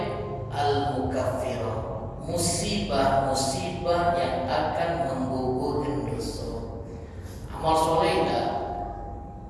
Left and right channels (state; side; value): identical; both; correlation 1.00